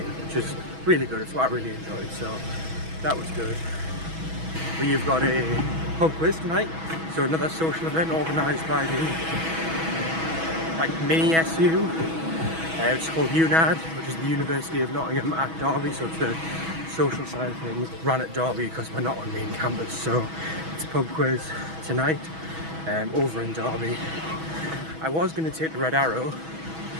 which is really good. It's what I really enjoyed, so that was good. We've got a pub quiz tonight, so another social event organised by the mini SU. It's called UNAD, which is the University of Nottingham at Derby, so it's the social side of things, ran at Derby because we're not on main campus. So it's a pub quiz tonight over in Derby. I was going to take the Red Arrow,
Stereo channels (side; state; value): left; late; 6.2 ms